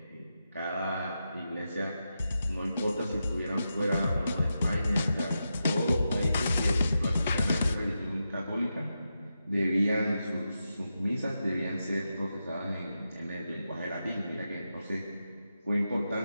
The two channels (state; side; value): inverted; both; correlation -0.88